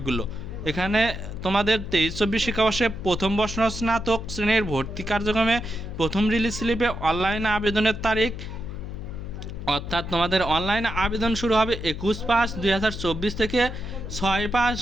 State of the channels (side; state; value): left; noise; hum, 9 dB below the sound